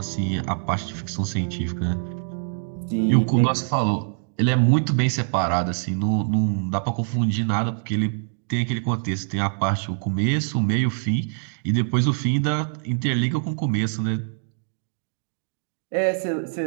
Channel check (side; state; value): left; silent; digital silence